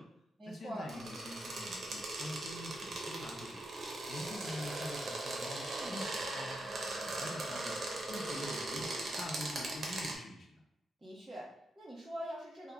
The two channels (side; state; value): both; normal; correlation 0.82